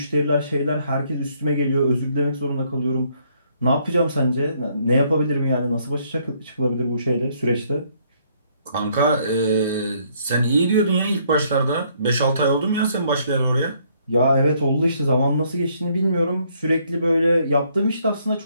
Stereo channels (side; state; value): both; inverted; correlation -0.68